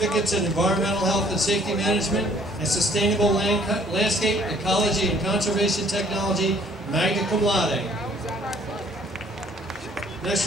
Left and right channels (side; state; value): both; normal; correlation 0.59